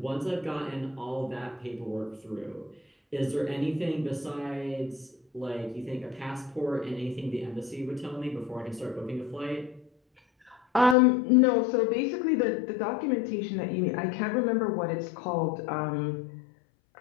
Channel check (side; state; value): right; drops out; at 11.0 s